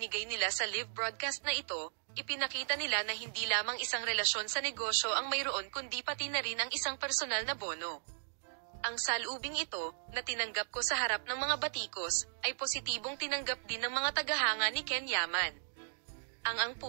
nila sa live broadcast na ito, ipinakita nila na hindi lamang isang relasyon sa negosyo ang mayroon kundi pati na ring ang isang personal na bono. Ang salubing ito, na tinanggap ko sa harap ng mga batikos, ay positibong tinanggap din ng mga tagahanga ni Ken Yaman. Ang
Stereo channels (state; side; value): silent; left; digital silence